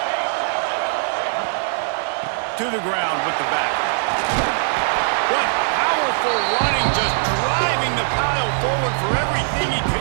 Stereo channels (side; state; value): left; silent; digital silence